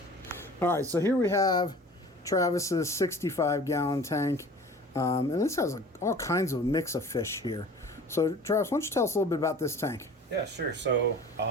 All right, so here we have Travis's 65-gallon tank. And this has all kinds of mix of fish here. So Travis, why don't you tell us a little bit about this tank? Yeah, sure. So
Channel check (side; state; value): both; normal; correlation 0.43